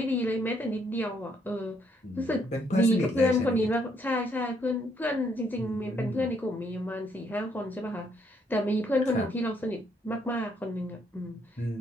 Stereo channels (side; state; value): both; normal; correlation 0.71